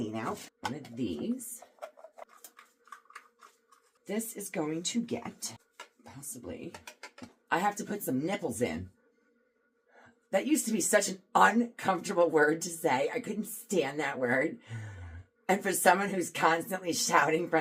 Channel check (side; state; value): both; identical; correlation 1.00